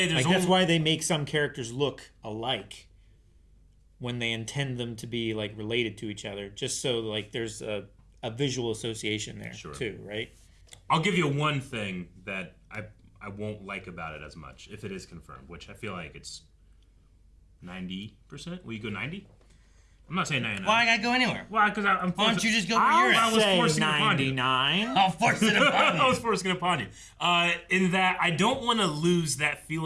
there's that's why they make some characters look alike when they intend them to be like related to each other, just so like there's a visual association there too, right? I'll give you one thing that I won't like about it as much if it is confirmed, which I feel like it's 90%. Will you go 90? I'm not saying 99. Why I gotta go anywhere? Why? Because I'm. Why don't you just go where you're at? I was forcing 99. I'll force it upon you. I was forcing it upon you. In that I don't want to lose that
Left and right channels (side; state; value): both; identical; correlation 1.00